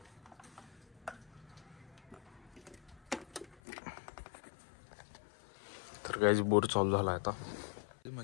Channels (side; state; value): right; drops out; at 3.6 s